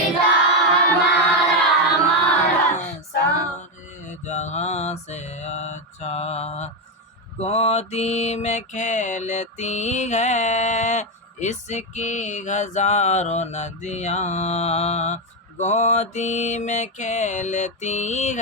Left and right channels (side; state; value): both; normal; correlation 0.07